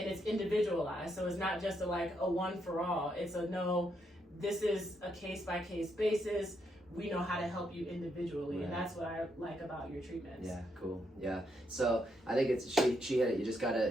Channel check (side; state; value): both; normal; correlation 0.78